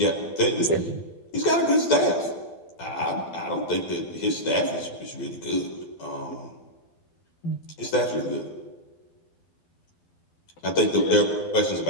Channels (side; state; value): right; late; 12 ms